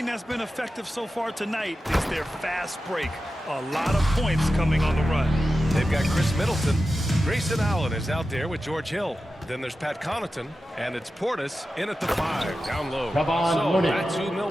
that's been effective so far tonight is their fast break. A lot of points coming on the run. They've got Chris Middleton. Grayson Allen is out there with George Hill. Then there's Pat Connaughton, and it's Portis in at the 5, down low. Kevon So Looney. that's who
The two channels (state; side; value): normal; both; correlation 0.92